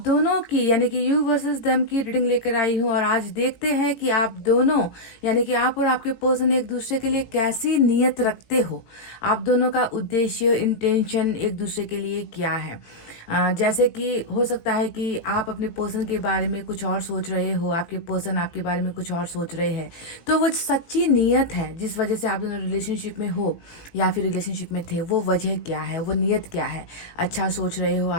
दोनों की यानी कि यू वर्सेस देम की रीडिंग लेकर आई हूँ और आज देखते हैं कि आप दोनों यानी कि आप और आपके पर्सन एक दूसरे के लिए कैसी नीयत रखते हो। आप दोनों का उद्देश्य, इंटेंशन एक दूसरे के लिए क्या है। जैसे कि हो सकता है कि आप अपने पर्सन के बारे में कुछ और सोच रहे हो, आपके पर्सन आपके बारे में कुछ और सोच रहे हैं। तो वो सच्ची नीयत है जिस वजह से आप दोनों रिलेशनशिप में हो या फिर रिलेशनशिप में थे, वो वजह क्या है, वो नीयत क्या है। अच्छा सोच रहे हो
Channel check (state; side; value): late; right; 18 ms